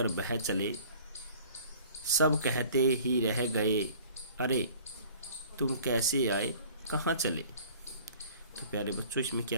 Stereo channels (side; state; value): both; inverted; correlation -0.49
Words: बह चले, सब कहते ही रह गए, अरे तुम कैसे आए कहाँ चले। तो प्यारे बच्चों, इसमें